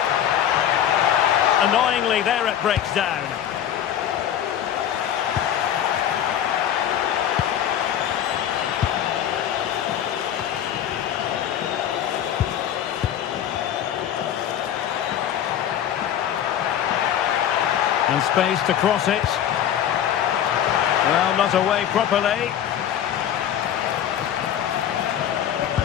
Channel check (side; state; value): right; quieter; 10.2 dB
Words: Annoyingly, there it breaks down. And space to cross it. Well, not away properly.